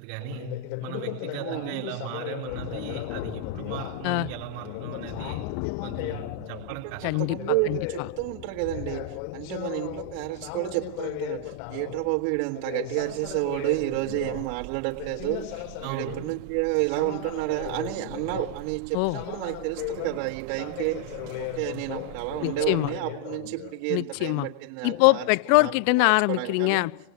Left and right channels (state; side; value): different; both; correlation 0.00